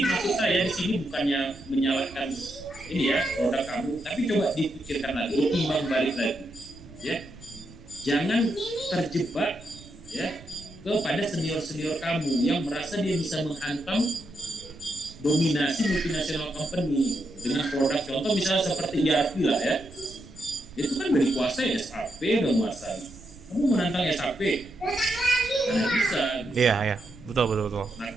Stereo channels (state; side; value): noise; right; rumble, 20 dB below the sound